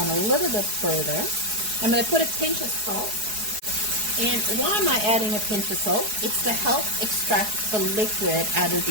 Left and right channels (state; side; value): late; left; 4.7 ms